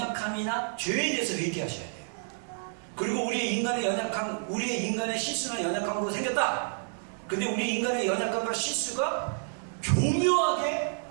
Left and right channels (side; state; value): left; silent; 58 dB below the other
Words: 죄에 대해서 회개하셔야 돼요. 그리고 우리의 인간의 연약함, 우리의 인간의 실수나 연약함으로 생겼다. 근데 우리 인간의 연약함과 실수가 교묘하게